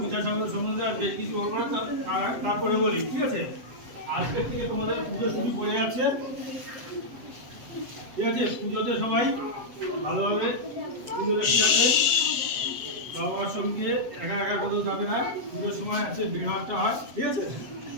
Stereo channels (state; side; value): late; left; 7.7 ms